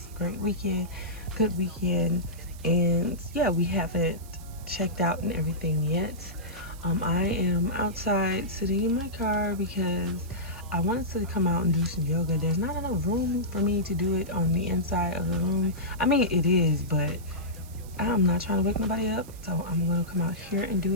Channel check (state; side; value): noise; right; hiss, 21 dB below the sound